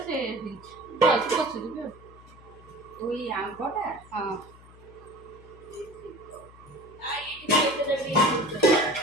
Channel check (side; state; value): left; noise; hum, 22 dB below the sound